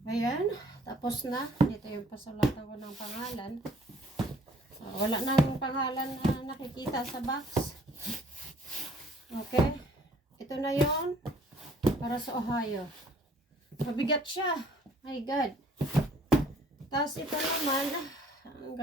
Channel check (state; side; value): normal; both; correlation 0.57